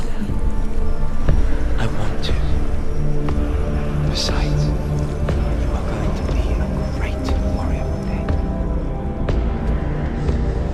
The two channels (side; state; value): both; identical; correlation 1.00